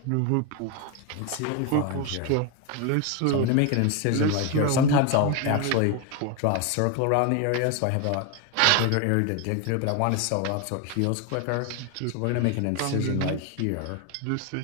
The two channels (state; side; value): different; both; correlation 0.01